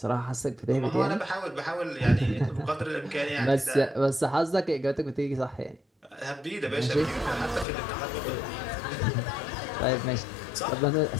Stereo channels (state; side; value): drops out; right; at 7.7 s